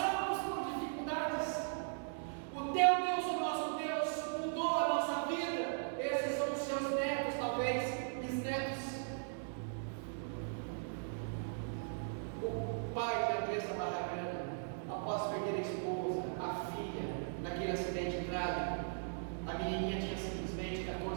por dificuldades. O teu Deus, o nosso Deus, mudou a nossa vida. Esses são os seus netos, talvez, bisnetos. O pai de Andressa Barragana, após perder a esposa, a filha, naquele acidente trágico, a menininha tinha simplesmente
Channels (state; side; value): silent; left; digital silence